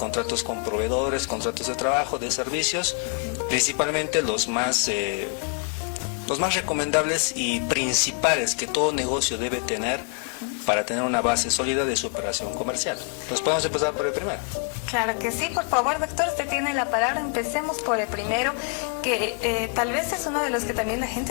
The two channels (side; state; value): right; quieter; 36.5 dB